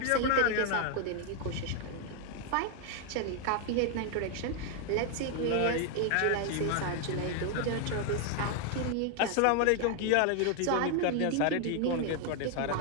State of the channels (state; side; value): different; both; correlation 0.00